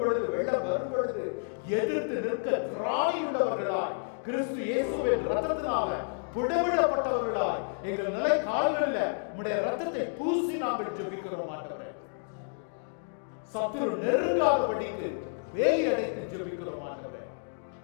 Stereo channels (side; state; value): right; silent; digital silence